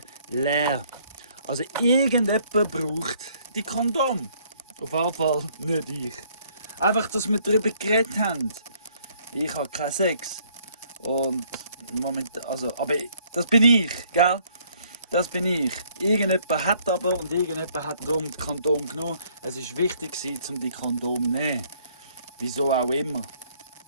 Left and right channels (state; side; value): inverted; both; correlation -0.64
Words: leer. Also irgendjemand braucht die Kondom. Auf jeden Fall nicht ich. Einfach, dass wir darüber geredet haben. Ich habe keinen Sex. Und momentan, also, aber das bin ich, gell? Das bin ich. Irgendjemand hat aber und irgendjemand hat darum die Kondom genommen. Es war wichtig, um die Kondom zu nehmen. Wieso auch immer.